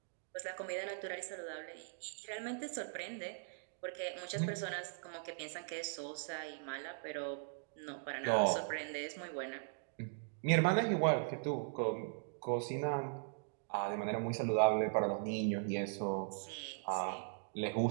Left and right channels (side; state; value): left; silent; digital silence